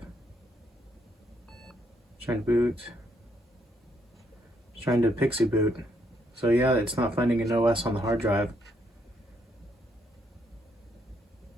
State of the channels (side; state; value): both; normal; correlation 0.73